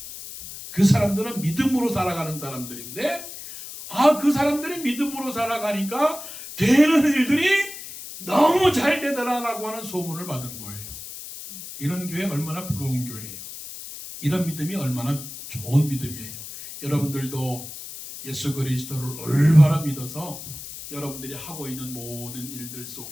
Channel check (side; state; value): left; noise; hiss, 11 dB below the sound